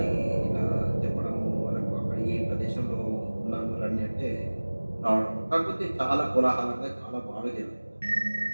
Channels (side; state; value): both; inverted; correlation -1.00